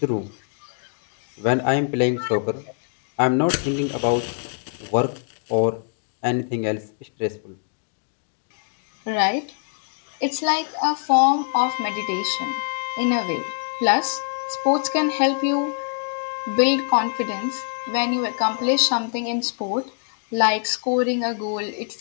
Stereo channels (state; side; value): silent; right; digital silence